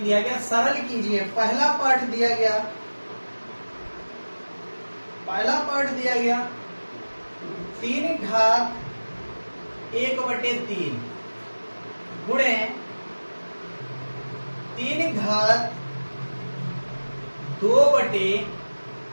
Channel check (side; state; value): both; inverted; correlation -1.00